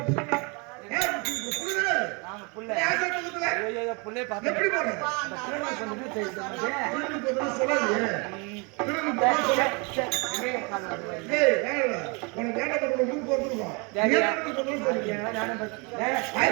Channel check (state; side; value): quieter; left; 31.1 dB